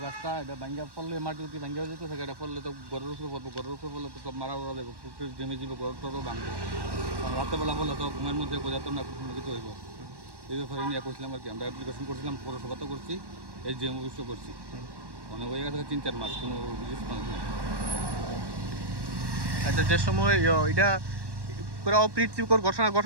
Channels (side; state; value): left; late; 1.1 ms